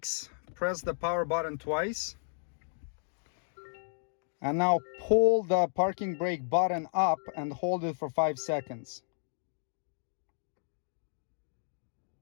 press the power button twice. And now pull the parking brake button up and hold it for 5 seconds.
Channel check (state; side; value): silent; right; digital silence